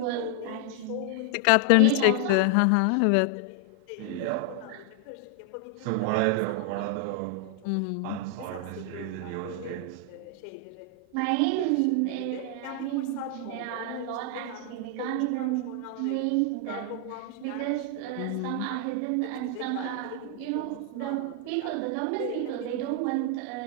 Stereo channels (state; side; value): different; both; correlation 0.00